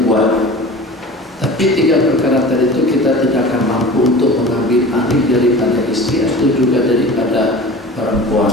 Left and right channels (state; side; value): normal; both; correlation 0.38